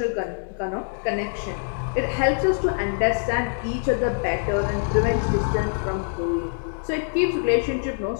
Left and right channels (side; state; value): right; silent; digital silence